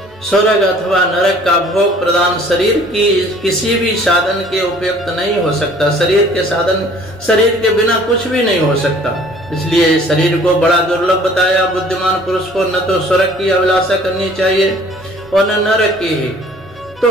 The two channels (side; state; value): both; normal; correlation 0.53